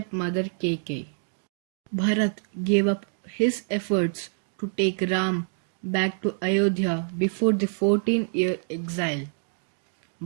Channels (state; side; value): silent; left; digital silence